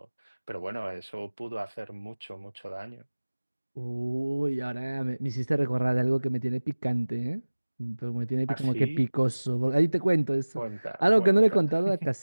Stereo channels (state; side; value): inverted; both; correlation -1.00